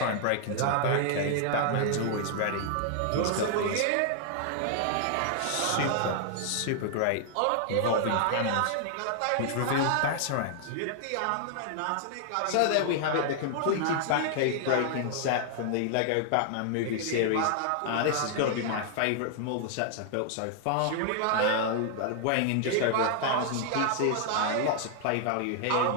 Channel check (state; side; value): different; both; correlation -0.01